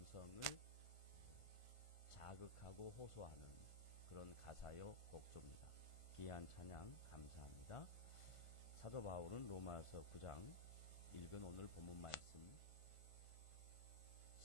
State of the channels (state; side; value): late; right; 1.5 ms